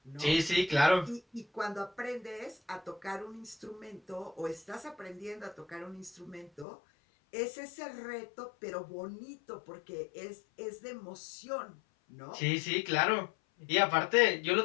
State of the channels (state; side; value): drops out; right; at 6.7 s